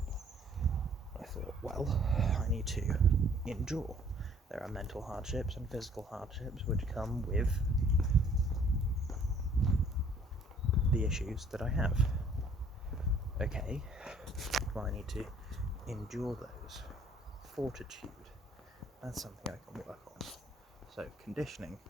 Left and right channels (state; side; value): normal; both; correlation 0.58